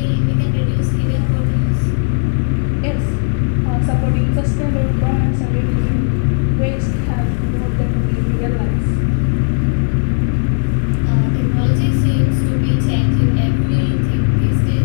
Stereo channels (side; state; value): right; silent; digital silence